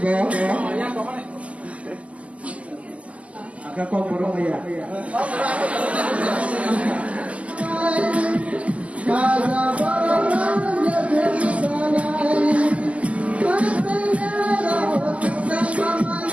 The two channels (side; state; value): left; late; 0.067 ms